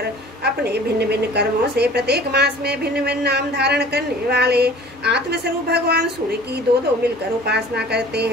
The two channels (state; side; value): normal; both; correlation 0.47